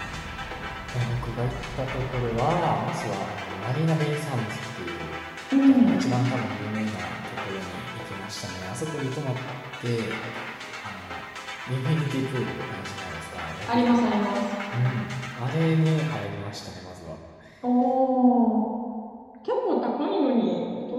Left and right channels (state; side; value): identical; both; correlation 1.00